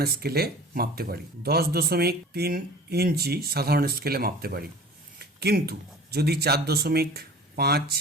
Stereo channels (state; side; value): normal; both; correlation 0.42